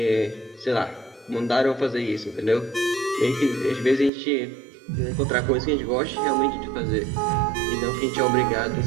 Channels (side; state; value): left; drops out; at 4.1 s